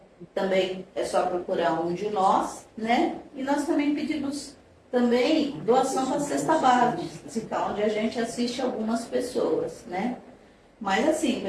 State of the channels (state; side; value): identical; both; correlation 1.00